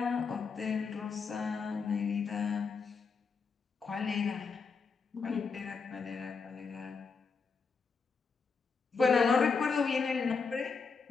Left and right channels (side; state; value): right; quieter; 5.1 dB